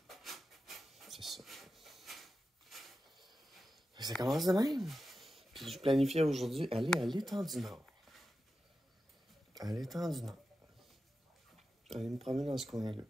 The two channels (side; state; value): both; normal; correlation 0.91